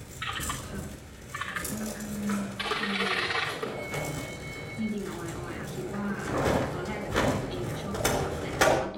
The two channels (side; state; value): both; identical; correlation 1.00